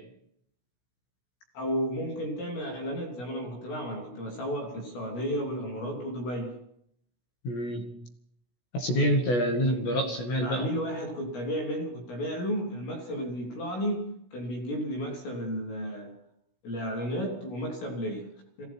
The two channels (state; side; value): late; right; 16 ms